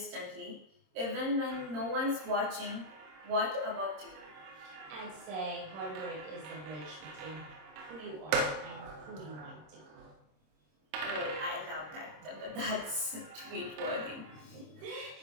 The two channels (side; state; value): left; late; 26 ms